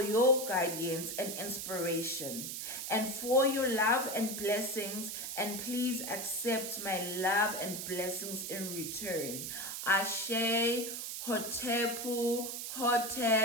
your guidance and inspiration, and for your love and blessings, and please accept my love and blessings in return. Ashe, Hotepu,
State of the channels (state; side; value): noise; right; hiss, 5 dB below the sound